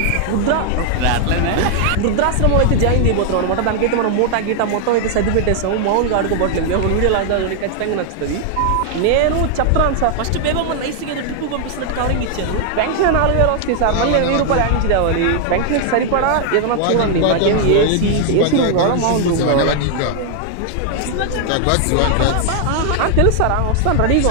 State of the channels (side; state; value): both; different; correlation 0.00